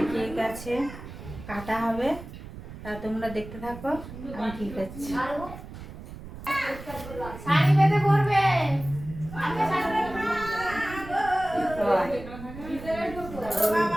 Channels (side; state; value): right; noise; rumble, 13 dB below the sound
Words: কেক আছে, কাটা হবে, তা তোমরা দেখতে থাকো, আমি ঠিক আছে। শাড়ি বেঁধে পরবে।